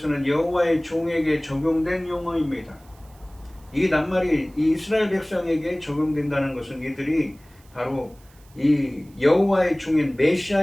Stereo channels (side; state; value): right; noise; hiss, 29 dB below the sound